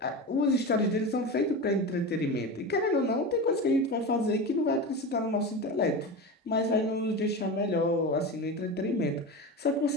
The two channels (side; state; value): both; normal; correlation 0.24